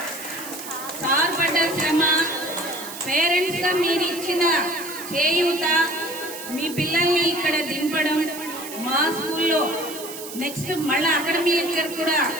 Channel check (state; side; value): noise; right; hiss, 11 dB below the sound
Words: శ్రమ పేరెంట్స్ గా మీరు ఇచ్చిన చేయూత, మీ పిల్లల్ని ఇక్కడ దింపడం, మా స్కూల్లో నెక్స్ట్ మళ్ళా అకాడమిక్ ఇయర్ కూడా